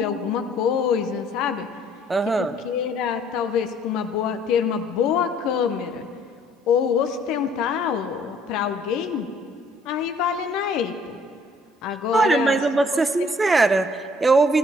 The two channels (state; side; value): normal; both; correlation 0.60